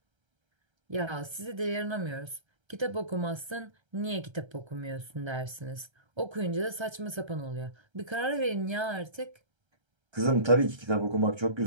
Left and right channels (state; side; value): late; left; 1.3 ms